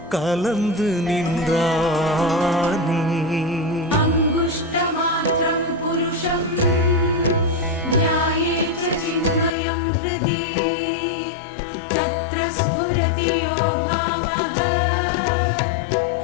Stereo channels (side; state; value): right; drops out; at 9.5 s